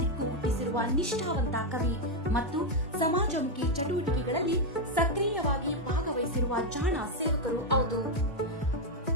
ರೂಪಿಸಿರುವ ನಿಷ್ಠಾವಂತ ಕವಿ ಮತ್ತು ಸಮಾಜಮುಖಿ ಚಟುವಟಿಕೆಗಳಲ್ಲಿ ಸಕ್ರಿಯವಾಗಿ ಭಾಗವಹಿಸಿರುವ ಜಾಣ ಸೇವಕರು ಹೌದು.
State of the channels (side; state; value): both; normal; correlation 0.03